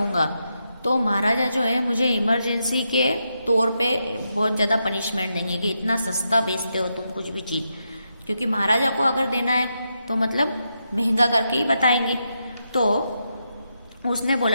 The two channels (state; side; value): inverted; both; correlation -0.84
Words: तो महाराजा जो है मुझे इमरजेंसी के तौर पे बहुत ज़्यादा पनिशमेंट देंगे कि इतना सस्ता बेचते हो तुम कुछ भी चीज़, क्योंकि महाराजा को अगर देना है तो मतलब महंगा करके ही बताएंगे। तो उसने